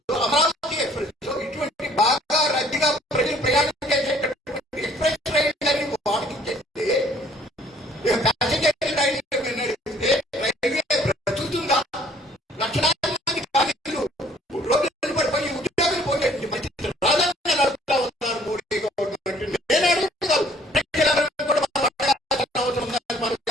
అమరావతి ఎక్స్ప్రెస్, ఇటువంటి బాగా రద్దీగా ప్రజలు ప్రయాణం చేసేటటువంటి ఎక్స్ప్రెస్ రైళ్లని వాడికి చేస్తే ప్యాసింజర్ రైలు నడిపితే రైల్వే బ్రతుకుతుందా? లక్షలాది మంది కార్మికులు రోజులు పడిపోయి ఉద్యోగులు పోయేటువంటి పరిస్థితి రాదని నడుపుతా ఉన్నారు మోడీ గవర్నమెంట్. నేను అడుగుతున్నాను, ప్రజలందరూ కూడా అవసరం ఉందని మనం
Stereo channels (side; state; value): both; normal; correlation 0.58